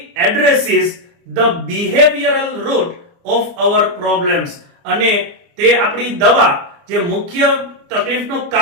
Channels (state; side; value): late; left; 29 ms